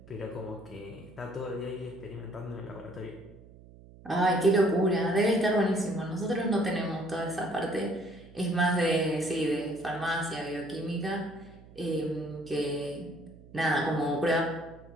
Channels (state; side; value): noise; right; hum, 21 dB below the sound